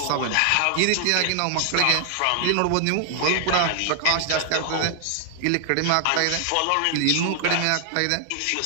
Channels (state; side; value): different; both; correlation 0.00